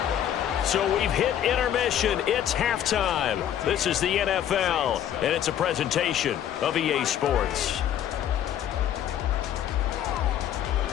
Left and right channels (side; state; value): right; quieter; 10.4 dB